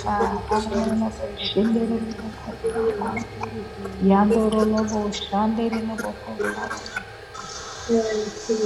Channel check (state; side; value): identical; both; correlation 1.00